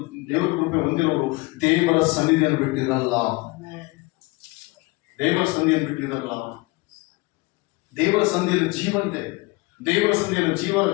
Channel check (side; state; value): right; quieter; 24.2 dB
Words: ದೇವರ ಕೃಪೆ ಹೊಂದಿರೋರು ದೇವರ ಸನ್ನಿಧಿಯನ್ನು ಬಿಟ್ಟಿರಲ್ಲ. ದೇವರ ಸನ್ನಿಧಿಯನ್ನು ಬಿಟ್ಟಿರಲ್ಲ. ದೇವರ ಸಂಧಿಯಲ್ಲಿ ಜೀವ ಇದೆ, ದೇವರ ಸಂಧಿಯಲ್ಲಿ